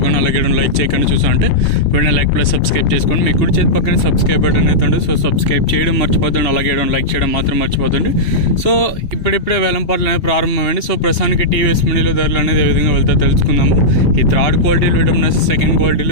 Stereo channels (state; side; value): late; right; 2.7 ms